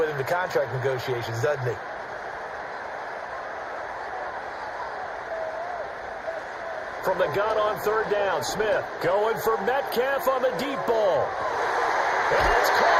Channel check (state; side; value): identical; both; correlation 1.00